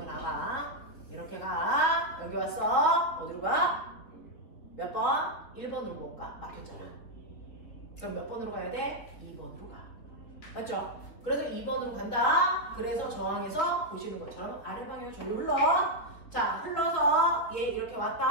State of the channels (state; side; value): late; right; 3.8 ms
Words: 나가. 이렇게 가. 여기 왔어. 어디로 가? 몇 번? 1번으로 못 가. 막혔잖아. 그럼 몇 번으로 가야 돼? 2번으로 가. 맞죠? 그래서 2번으로 간다. 그래서 저항에서 보시는 것처럼 아래 방향 전류 흘러. 자, 흘러서 얘 이렇게